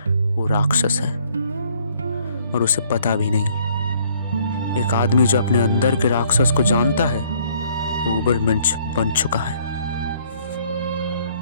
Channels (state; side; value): inverted; both; correlation -0.62